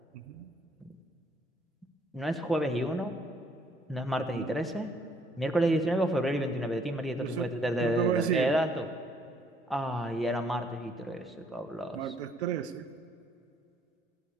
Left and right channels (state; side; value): normal; both; correlation 0.66